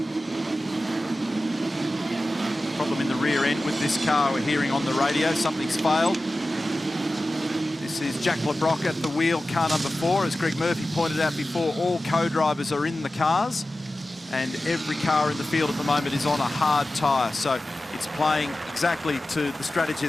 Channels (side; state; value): both; normal; correlation 0.95